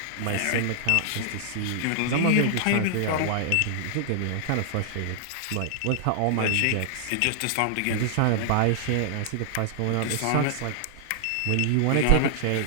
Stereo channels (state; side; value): different; both; correlation -0.01